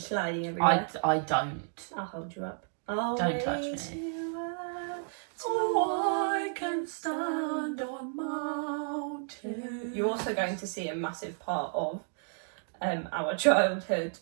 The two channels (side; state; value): left; silent; digital silence